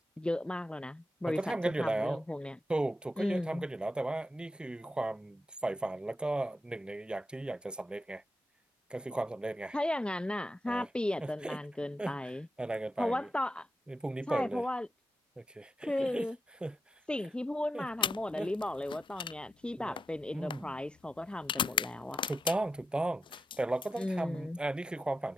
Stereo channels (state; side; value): normal; both; correlation 0.86